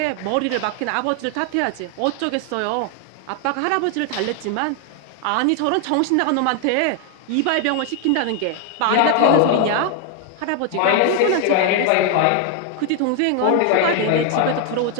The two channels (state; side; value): different; both; correlation 0.00